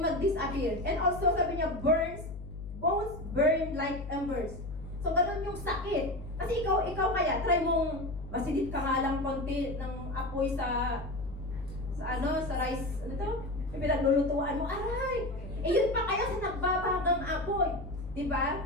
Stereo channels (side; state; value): left; noise; hum, 11 dB below the sound